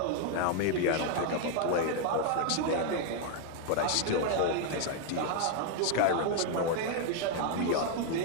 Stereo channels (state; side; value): different; both; correlation 0.00